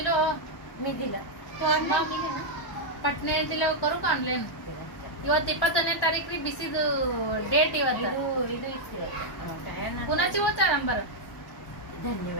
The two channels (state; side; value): late; right; 1.1 ms